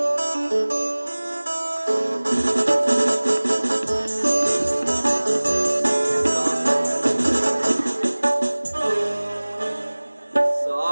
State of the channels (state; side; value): inverted; both; correlation -1.00